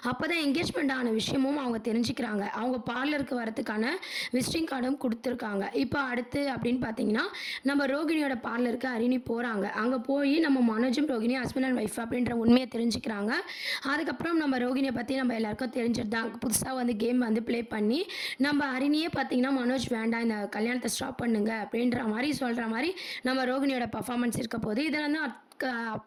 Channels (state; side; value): identical; both; correlation 1.00